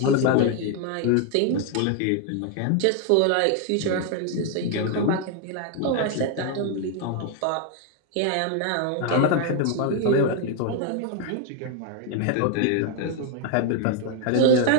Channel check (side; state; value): both; different; correlation 0.01